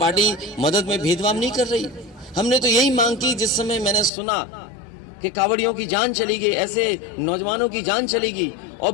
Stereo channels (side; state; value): right; drops out; at 4.1 s